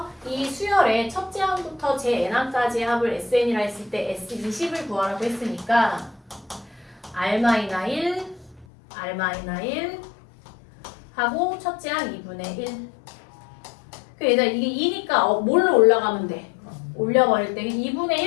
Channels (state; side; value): drops out; right; at 8.7 s